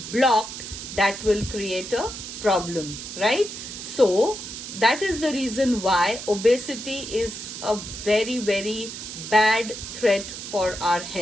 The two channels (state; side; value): noise; right; hiss, 9 dB below the sound